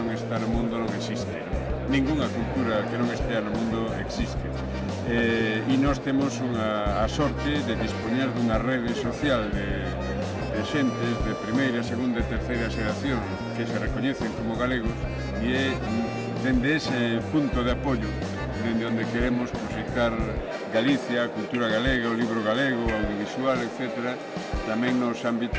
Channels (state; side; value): identical; both; correlation 1.00